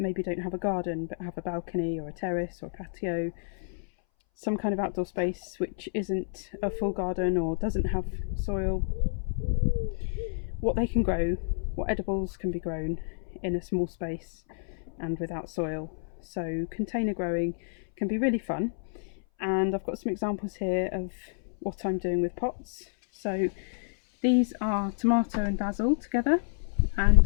don't have a garden but have a balcony or a terrace or a patio, some kind of outdoor space which isn't a full garden or doesn't have soil, what they can grow, what edibles can be grown in a small space and without soil. So container growing can be really fun, and I've got some examples here of what I'm doing with pots. So these are tomato and basil together, and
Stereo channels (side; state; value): right; silent; 58 dB below the other